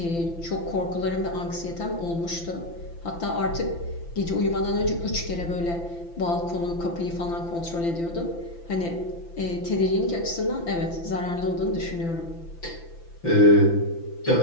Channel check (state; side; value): late; right; 5.9 ms